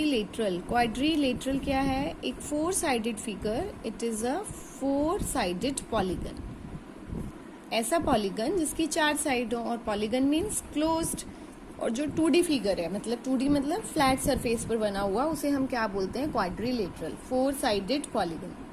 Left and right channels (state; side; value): identical; both; correlation 1.00